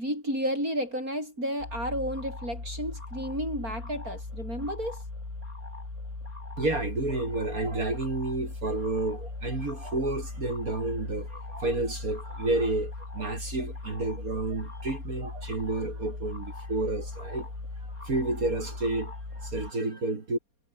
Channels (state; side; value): late; left; 4.3 ms